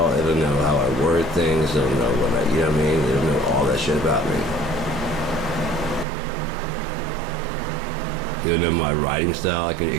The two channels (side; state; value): left; drops out; at 6.1 s